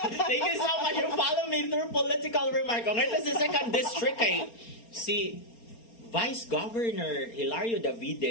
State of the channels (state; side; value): late; right; 4.3 ms